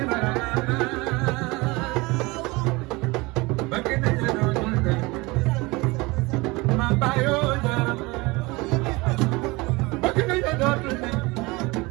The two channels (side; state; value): left; quieter; 23.7 dB